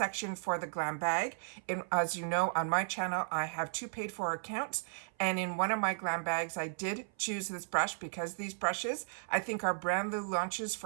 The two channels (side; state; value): left; silent; 54 dB below the other